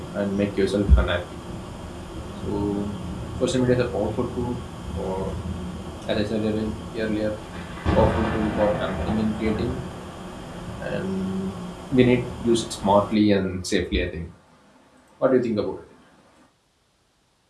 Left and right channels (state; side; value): identical; both; correlation 1.00